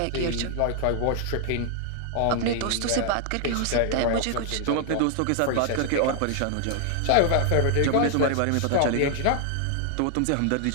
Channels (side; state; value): both; different; correlation 0.00